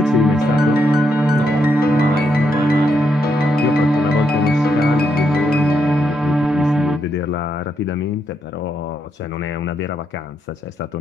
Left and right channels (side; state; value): both; normal; correlation 0.79